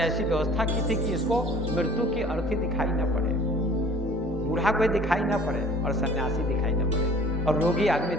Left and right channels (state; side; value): normal; both; correlation 0.50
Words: ऐसी व्यवस्था की थी कि इसको मृत्यु की अर्थी दिखाई न पड़े, बूढ़ा कोई दिखाई न पड़े और सन्यासी दिखाई न पड़े और रोगी आदमी